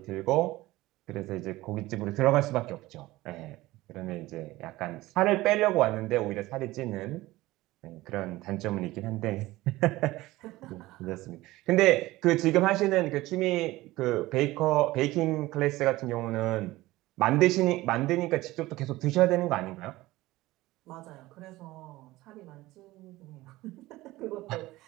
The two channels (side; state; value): left; quieter; 18.3 dB